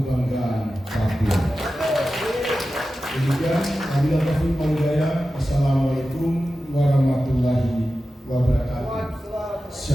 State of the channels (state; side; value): normal; both; correlation 0.93